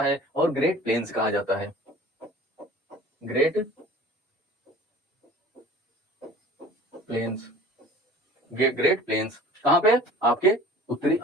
है और ग्रेट प्लेन्स कहा जाता है। ग्रेट प्लेन्स, ग्रेट प्लेन्स कहां पे, आपके उत्तरी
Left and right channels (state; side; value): normal; both; correlation 0.44